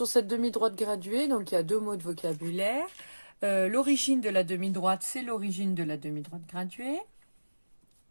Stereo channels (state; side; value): inverted; both; correlation -1.00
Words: cette demi-droite graduée, donc il y a 2 mots de vocabulaire. L'origine de la demi-droite, c'est l'origine de la demi-droite graduée.